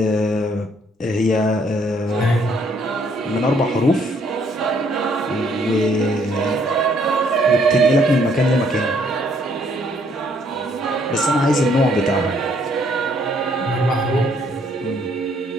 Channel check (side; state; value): both; normal; correlation 0.66